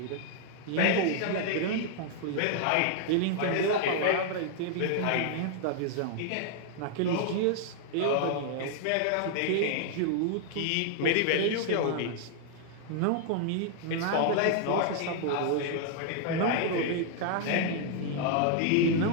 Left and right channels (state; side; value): different; both; correlation 0.00